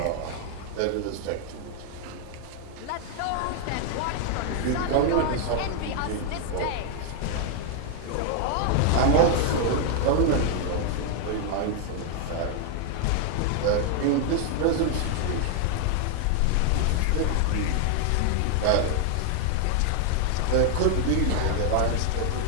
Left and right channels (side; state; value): both; different; correlation 0.00